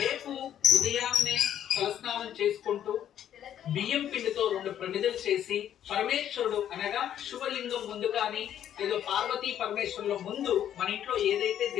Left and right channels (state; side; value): quieter; right; 10.4 dB